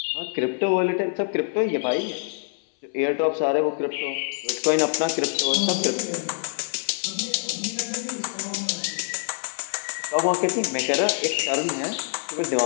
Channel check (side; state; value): right; silent; 62 dB below the other